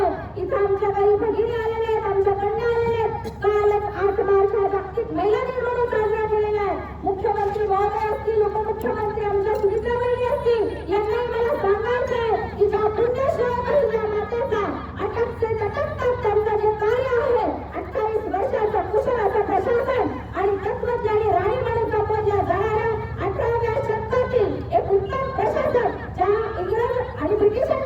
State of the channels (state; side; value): identical; both; correlation 1.00